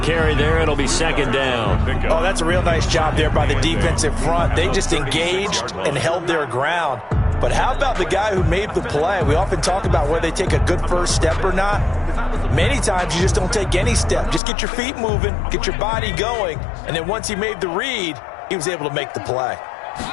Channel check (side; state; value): right; drops out; at 14.4 s